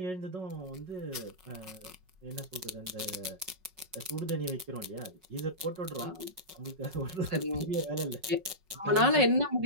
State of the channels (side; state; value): left; late; 5.4 ms